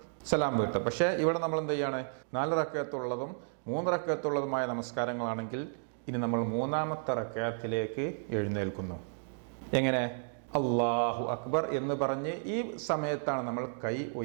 സലാം വീട്ടും. പക്ഷേ ഇവിടെ നമ്മൾ എന്ത് ചെയ്യാണ്, 4 റക്അത്തുള്ളതും 3 റക്അത്തുള്ളതുമായ നമസ്കാരങ്ങളാണെങ്കിൽ ഇനി നമ്മൾ 3ാമത്തെ റക്അത്തിലേക്ക് എഴുന്നേൽക്കുന്നു. എങ്ങനെ? അല്ലാഹു അക്ബർ എന്ന് പറഞ്ഞ് ഈ സമയത്താണ് നമ്മൾ കൈ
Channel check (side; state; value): left; silent; digital silence